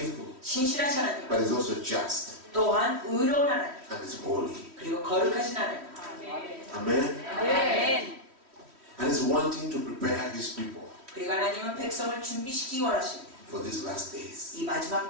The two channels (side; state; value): left; late; 3.1 ms